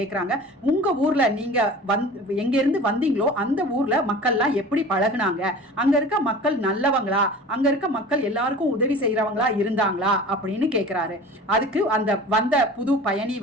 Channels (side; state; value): both; normal; correlation 0.40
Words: உங்கள் ஊரில் நீங்கள் எங்கேருந்து வந்தீங்களோ அந்த ஊரில் மக்கள்லாம் எப்படி பழகுனாங்க, அங்கே இருக்க மக்கள் நல்லவங்களா, அங்கே இருக்க மக்கள் எல்லாருக்கும் உதவி செய்கிறவங்களா இருந்தாங்களா அப்படின்னு கேட்குறாரு. அதுக்கு அந்த வந்த புது பயணி